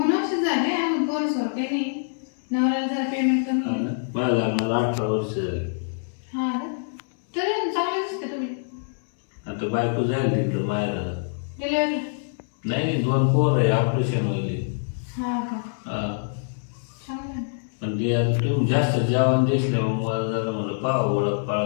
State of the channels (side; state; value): right; silent; 60 dB below the other